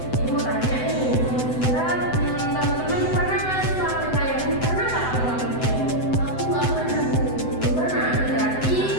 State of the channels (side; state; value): right; late; 7.9 ms